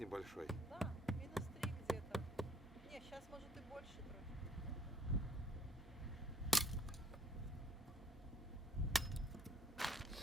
Да, -3 где-то. Не, сейчас может и больше трохи.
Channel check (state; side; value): normal; both; correlation 0.60